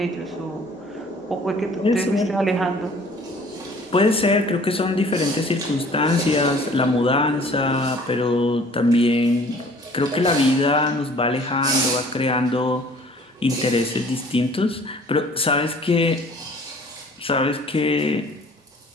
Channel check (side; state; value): both; normal; correlation 0.52